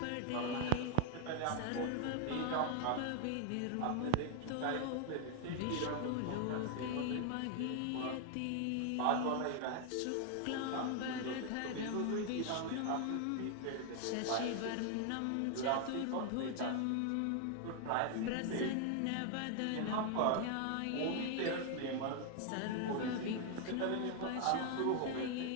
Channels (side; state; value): both; different; correlation 0.00